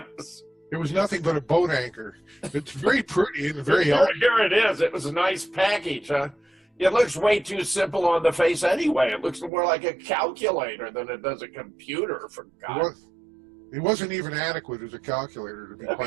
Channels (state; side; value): drops out; left; at 9.5 s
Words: It was nothing but a boat anchor. It's very pretty and very here, elegant. here it is. It was a nice package, huh? It looks way too simple on the face anyway. It looks more like a calculator than it does a computer, for God's sake. It wasn't even adequate as a calculator, to be